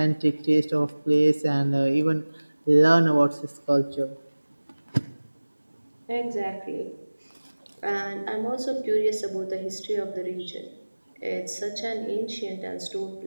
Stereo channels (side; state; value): both; inverted; correlation -1.00